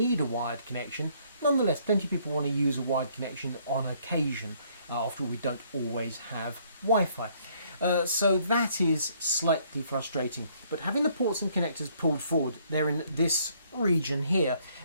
a wired connection. Nonetheless, plenty of people want to use a wired connection on occasion. After all, we don't always have Wi-Fi. So that is slightly frustrating, but having the ports and connectors pulled forward, they're in this region here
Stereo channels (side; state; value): both; inverted; correlation -0.65